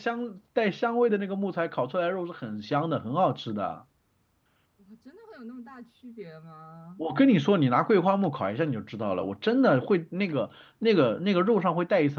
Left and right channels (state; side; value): identical; both; correlation 1.00